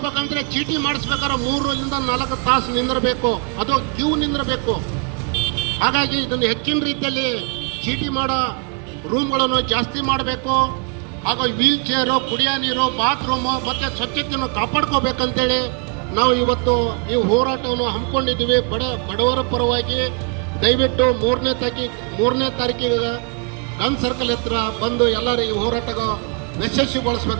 ಚೀಟಿ ಮಾಡಿಸ್ಬೇಕಾದ್ರೆ 3 ರಿಂದ 4 ತಾಸು ನಿಂದಿರಬೇಕು, ಅದು ಕ್ಯೂ ನಿಂದಿರಬೇಕು. ಹಾಗಾಗಿ ಇದನ್ನು ಹೆಚ್ಚಿನ ರೀತಿಯಲ್ಲಿ ಚೀಟಿ ಮಾಡೋ ರೂಮ್ಗಳನ್ನು ಜಾಸ್ತಿ ಮಾಡಬೇಕು. ಹಾಗೂ ವೀಲ್ ಚೇರು, ಕುಡಿಯೋ ನೀರು, ಬಾತ್ರೂಮು ಮತ್ತು ಸ್ವಚ್ಛತೆಯನ್ನು ಕಾಪಾಡ್ಕೋಬೇಕಂತೇಳಿ ನಾವು ಇವತ್ತು ಈ ಹೋರಾಟವನ್ನು ಹಮ್ಮಿಕೊಂಡಿದ್ದೀವಿ. ಬಡವರ ಪರವಾಗಿ ದಯವಿಟ್ಟು 3ನೇ ತಾರೀಕಿಗೆ ಗನ್ ಸರ್ಕಲ್ ಹತ್ರ ಬಂದು ಎಲ್ಲರೂ ಈ ಹೋರಾಟ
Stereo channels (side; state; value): left; quieter; 35.7 dB